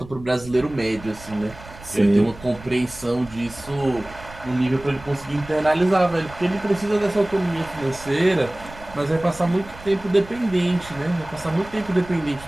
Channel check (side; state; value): right; noise; rumble, 18 dB below the sound